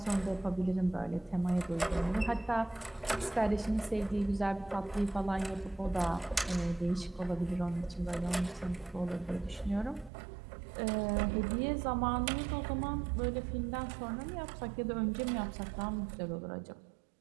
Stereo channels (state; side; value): drops out; left; at 10.1 s